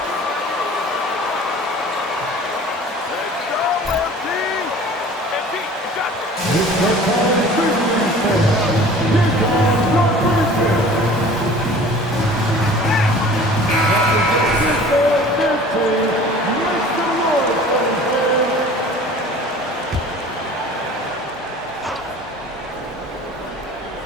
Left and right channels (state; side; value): normal; both; correlation 0.45